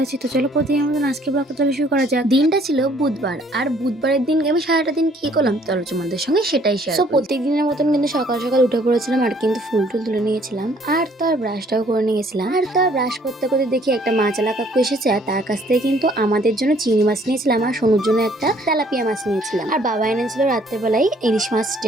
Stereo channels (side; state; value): both; normal; correlation 0.61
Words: আছি। তো চলো প্রতিদিনের মতন আজকে ব্লগটা তাহলে শুরু করা যাক। দিনটা ছিল বুধবার, আর বুধবারের দিন আমি সারাটা দিন কি করলাম চলো তোমাদের সঙ্গে সেটাই শেয়ার করি। প্রত্যেক দিনের মতন কিন্তু সকাল সকাল উঠে পড়েছিলাম আর কিন্তু ফুল টুল তুলে নিয়েছিলাম, আর তো আর ব্রাশটাও করে নিয়েছিলাম। আর তো আর ব্রাশ করতে করতে দেখি একটা মাছালা কাকু এসেছে, আর তার কাছ থেকে কিন্তু আমাদের জন্য চিংড়ি মাছ নিয়েছিলাম আর সোনুর জন্য একটা তেলাপিয়া মাছ নিয়েছিলাম। আর বাবা এনেছিল রাত্রেবেলায় ইলিশ মাছ